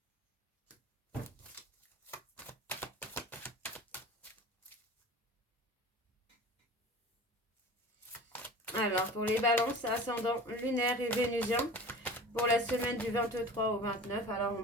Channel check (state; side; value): normal; both; correlation 0.38